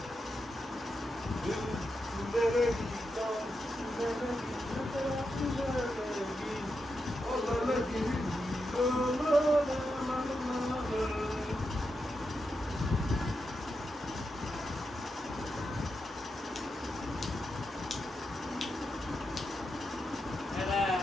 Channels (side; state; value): both; normal; correlation 0.86